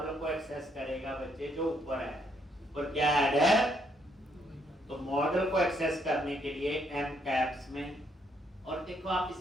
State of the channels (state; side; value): normal; both; correlation 0.73